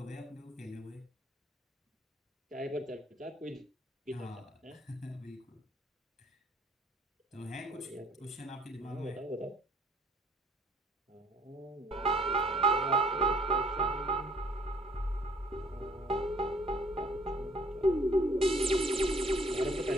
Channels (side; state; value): both; normal; correlation 0.58